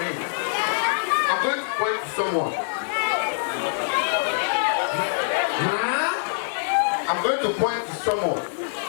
him, I'm going to point to someone. I'm going to point to someone.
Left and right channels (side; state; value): right; silent; 62 dB below the other